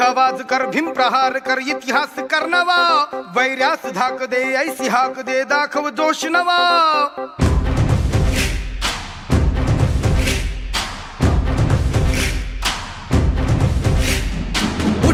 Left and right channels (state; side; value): identical; both; correlation 1.00